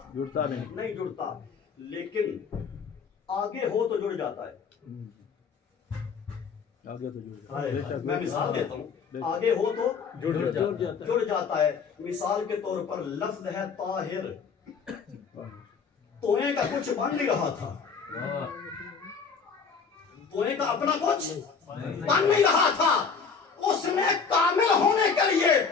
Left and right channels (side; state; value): right; quieter; 5.6 dB